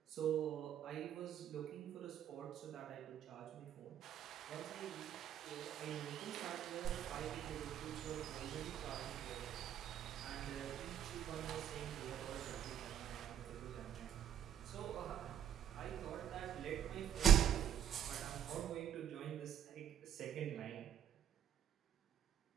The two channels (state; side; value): quieter; left; 9.7 dB